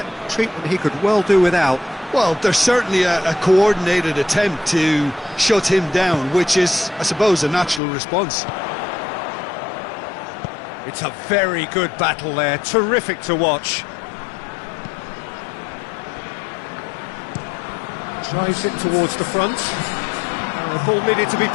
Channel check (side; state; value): right; drops out; at 7.8 s